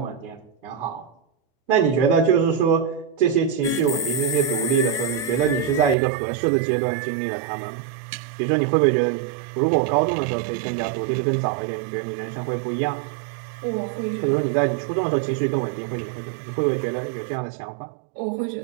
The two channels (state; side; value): drops out; left; at 6.0 s